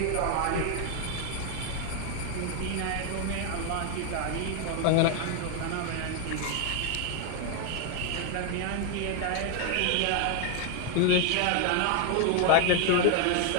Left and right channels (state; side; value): different; both; correlation 0.01